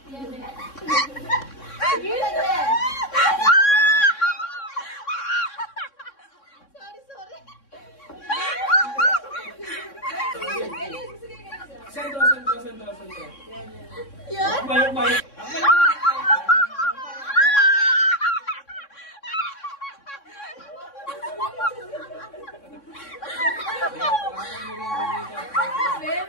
Sentro. Yan? Mayok.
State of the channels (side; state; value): right; late; 3.6 ms